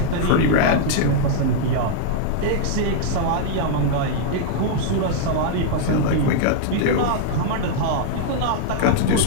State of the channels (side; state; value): both; different; correlation -0.01